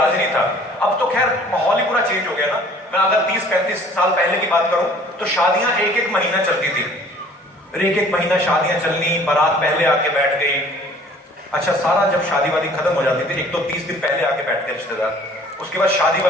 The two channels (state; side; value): normal; both; correlation 0.52